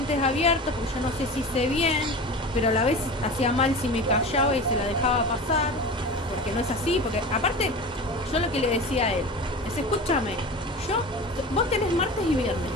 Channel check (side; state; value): both; normal; correlation 0.32